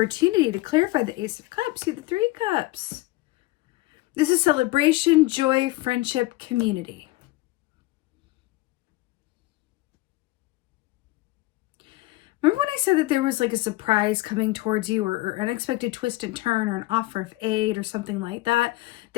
to clarify the Ace of Cups. See the Three Cups. This is celebration, joy, friendship, community. Remember when I said that there was like a surprise coming towards you or unexpected twist and turn or an offer of aid or something like that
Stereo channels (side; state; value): right; quieter; 19.6 dB